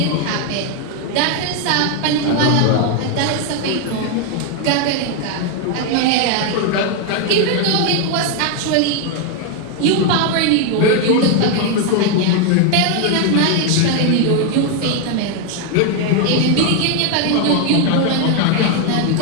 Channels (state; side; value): different; both; correlation 0.01